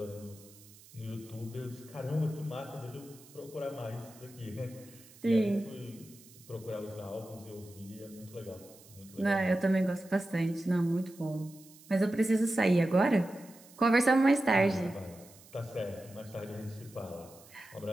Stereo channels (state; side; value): noise; right; hiss, 23 dB below the sound